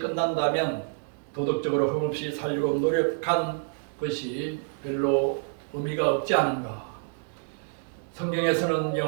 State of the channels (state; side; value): silent; left; 58 dB below the other